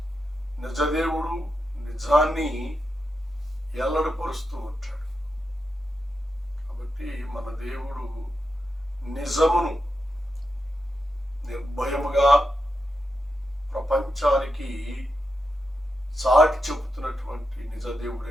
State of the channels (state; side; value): normal; both; correlation 0.87